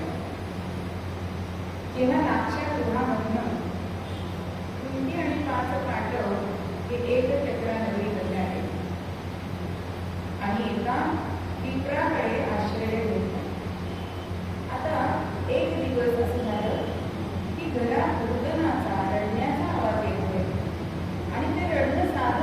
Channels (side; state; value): both; identical; correlation 1.00